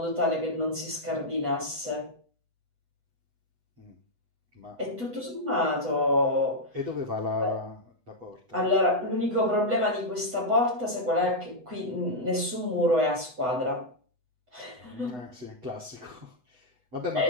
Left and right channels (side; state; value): left; late; 8.0 ms